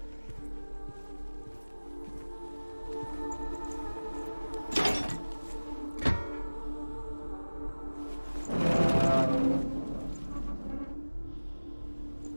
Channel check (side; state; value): both; inverted; correlation -1.00